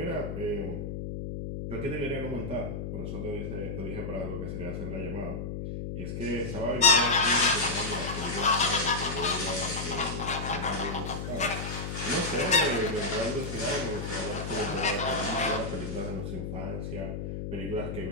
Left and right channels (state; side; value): noise; left; hum, 5 dB below the sound